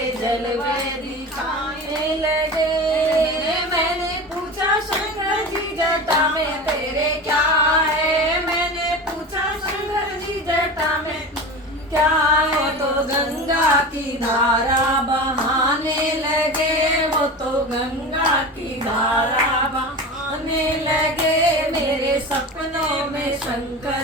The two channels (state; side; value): normal; both; correlation 0.30